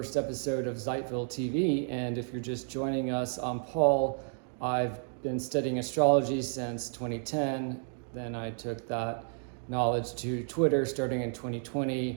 episode of Zeitville TV, and if you're just joining us, I'm Paul. I've been studying astrology since 2010. Then I took that knowledge to Twitter starting in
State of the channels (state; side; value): silent; left; 57 dB below the other